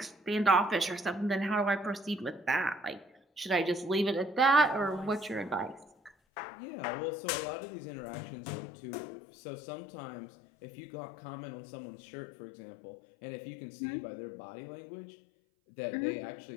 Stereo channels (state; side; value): drops out; right; at 6.1 s